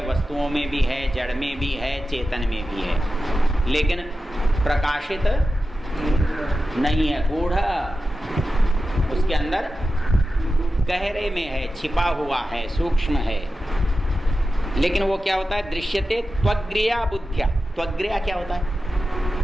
वस्तुओं में भी है, जड़ में भी है, चेतन में भी है, लेकिन प्रकाशित नहीं है। गूढ़ उसके अंदर गहरे में है, छिपा हुआ है, सूक्ष्म है। लेकिन वो क्या होता है? दृश्यते त्वग्र्या बुद्ध्या। त्वग्र्या क्या होता है?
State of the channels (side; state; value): both; normal; correlation 0.92